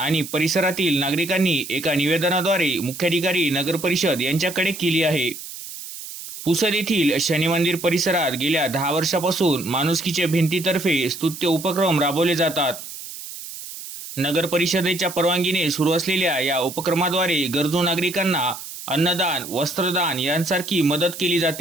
परिसरातील नागरिकांनी एका निवेदनाद्वारे मुख्याधिकारी नगर परिषद यांच्याकडे केली आहे। पुसद येथील शनी मंदिर परिसरात गेल्या 10 वर्षापासून माणुसकीच्या भिंतीतर्फे स्तुत्य उपक्रम राबवले जातात। नगर परिषदेच्या परवानगीने सुरू असलेल्या या उपक्रमाद्वारे गरजू नागरिकांना अन्नदान, वस्त्रदान यांसारखी मदत केली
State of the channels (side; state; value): right; noise; hiss, 11 dB below the sound